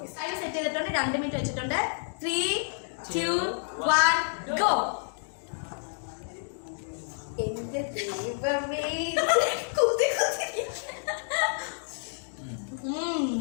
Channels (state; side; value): silent; right; digital silence